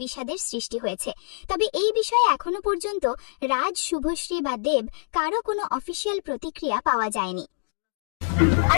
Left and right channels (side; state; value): right; silent; digital silence